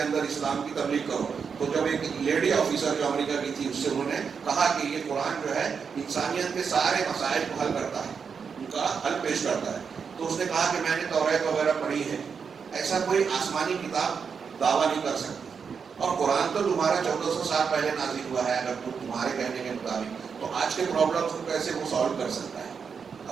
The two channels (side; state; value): left; quieter; 6.1 dB